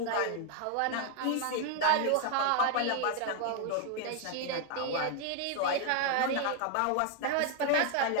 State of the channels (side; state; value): both; different; correlation 0.01